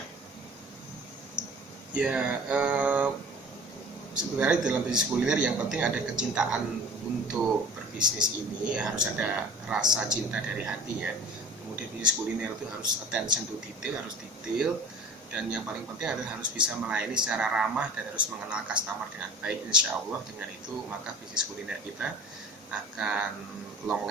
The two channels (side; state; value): both; normal; correlation 0.43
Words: Ya, sebenarnya dalam bisnis kuliner yang penting ada kecintaan untuk berbisnis ini, harus ada rasa cinta dari hati ya. Kemudian bisnis kuliner itu harus attention to detail, harus detail, dan yang paling penting adalah harus bisa melayani secara ramah dan harus mengenal customer dengan baik. Insya Allah dengan itu maka bisnis kuliner kita akan long